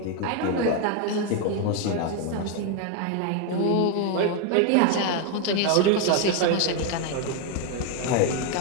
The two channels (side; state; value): both; different; correlation 0.01